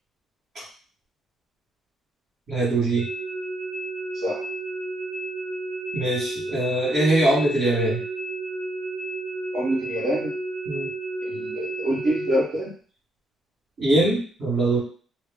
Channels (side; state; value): both; normal; correlation 0.75